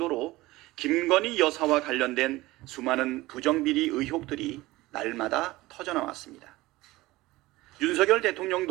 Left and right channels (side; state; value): left; quieter; 19.0 dB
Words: 김건희 여사와 관련된 수많은 부정비리 의혹들이 날마다 터져나왔습니다. 윤석열